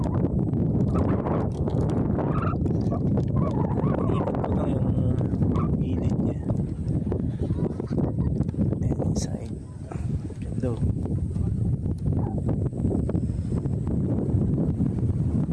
Iikot ko lang yung gilid niya. And inside. Ganda.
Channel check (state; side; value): identical; both; correlation 1.00